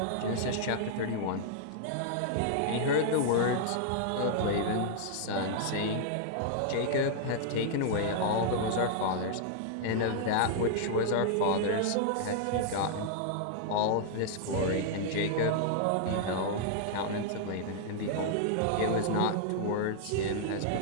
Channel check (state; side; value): different; both; correlation -0.01